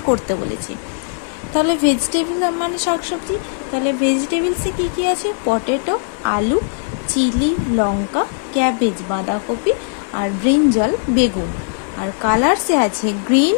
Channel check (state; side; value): silent; right; digital silence